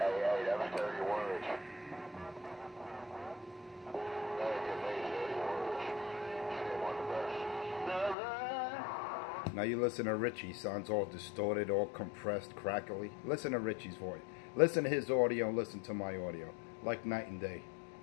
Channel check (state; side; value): drops out; right; at 8.2 s